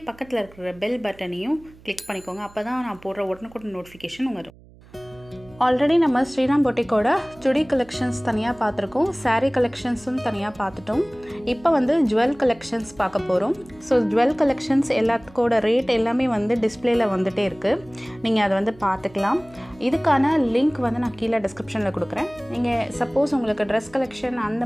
பக்கத்தில் இருக்கிற பெல் பட்டனையும் கிளிக் பண்ணிக்கோங்க. அப்பதான் நான் போடுற உடனுக்குடன் நோட்டிஃபிகேஷன் வரும். ஆல்ரெடி நம்ம ஸ்ரீராம் பொட்டிக்கோட சுடி கலெக்ஷன்ஸ் தனியாக பார்த்துருக்கோம், saree கலெக்ஷன்ஸும் தனியாக பார்த்துட்டோம். இப்போ வந்து ஜுவல் கலெக்ஷன்ஸ் பார்க்க போகிறோம். ஸோ ஜுவல் கலெக்ஷன்ஸ் எல்லாத்துக்கோட ரேட் எல்லாமே வந்து டிஸ்பிளேல வந்துகிட்டே இருக்குது, நீங்கள் அதை வந்து பார்த்துக்கலாம். இதுக்கான லிங்க் வந்து நான் கீழே டிஸ்கிரிப்ஷனில் கொடுக்குறேன். நீங்கள் சப்போஸ் உங்களுக்கு ட்ரெஸ் கலெக்ஷன் அந்த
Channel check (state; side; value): noise; right; hum, 24 dB below the sound